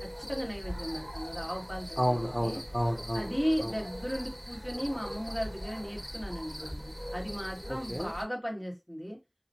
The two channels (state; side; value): identical; both; correlation 1.00